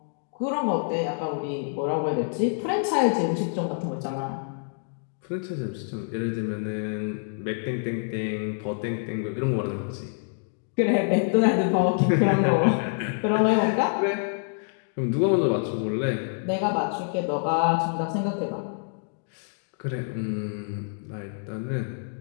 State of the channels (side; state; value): right; silent; 60 dB below the other